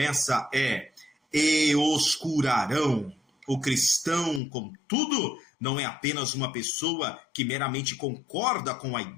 é, e os curarão. O cristão, contudo, não é apenas uma pessoa que meramente concorda com a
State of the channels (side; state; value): right; drops out; at 4.4 s